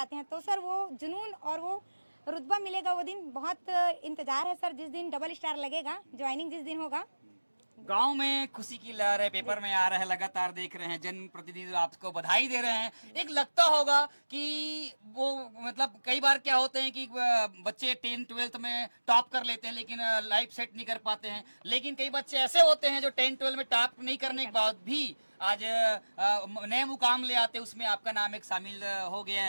हैं। तो सर वो जुनून और वो रुतबा मिलेगा वो दिन, बहुत इंतजार है सर, जिस दिन डबल स्टार लगेगा, ज्वाइनिंग जिस दिन होगा। गांव में खुशी की लहर है, पेपर में आ रहा है, लगातार देख रहे हैं, जनप्रतिनिधि आपको बधाई दे रहे हैं। एक लगता होगा कि वो मतलब कई बार क्या होते हैं कि बच्चे 10-12 में टॉप कर लेते हैं लेकिन लाइफ सेट नहीं कर पाते हैं, लेकिन कई बच्चे ऐसे होते हैं जो 10-12 में टॉप नहीं करने के बाद भी आज नए मुकाम ले आते, उसमें आपका नाम एक शामिल हो गया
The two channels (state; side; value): inverted; both; correlation -1.00